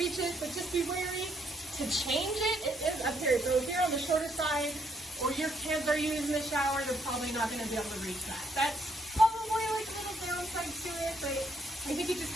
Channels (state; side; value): normal; both; correlation 0.72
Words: it, but just be wary to change it. It is up here. So if you're on the shorter side, or your kids are using the shower, they're probably not going to be able to reach that. That's probably like a little downside to it, but I think it just